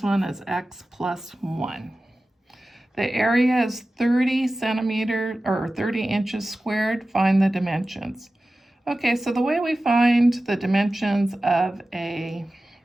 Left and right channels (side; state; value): both; normal; correlation 0.95